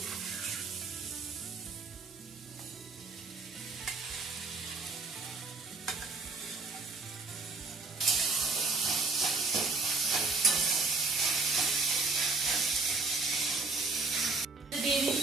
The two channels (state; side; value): quieter; left; 3.9 dB